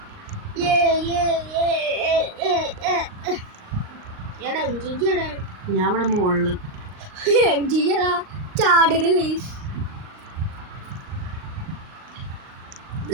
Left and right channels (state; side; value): late; left; 38 ms